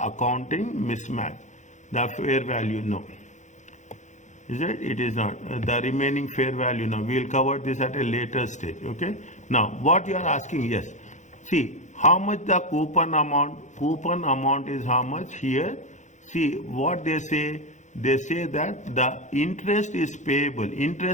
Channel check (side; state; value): right; late; 0.35 ms